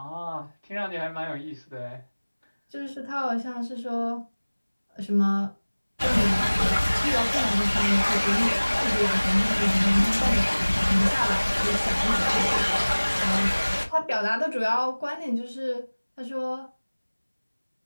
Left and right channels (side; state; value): both; inverted; correlation -1.00